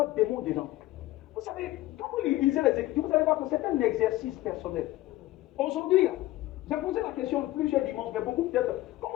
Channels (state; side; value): quieter; right; 16.9 dB